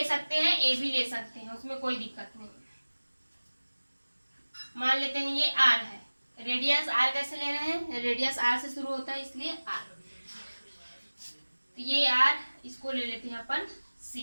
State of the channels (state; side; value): inverted; both; correlation -1.00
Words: सकते हैं, ए भी ले सकते हैं, उसमें कोई दिक्कत नहीं। मान लेते हैं ये आर है, रेडियस आर कैसे ले रहे हैं, रेडियस आर से शुरू होता है इसलिए आर, तो ये आर, इसको ले लेते हैं अपन